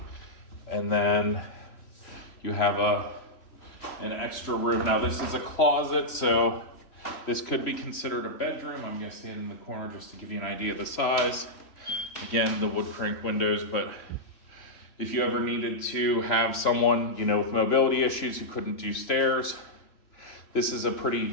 And then you have an extra room. Now this is a closet, so this could be considered a bedroom. I'm gonna stand in the corner just to give you an idea of the size. Again, the wood crank windows, but if you ever needed to have someone, with mobility issues who couldn't do stairs, this is a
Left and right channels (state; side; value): late; right; 3.0 ms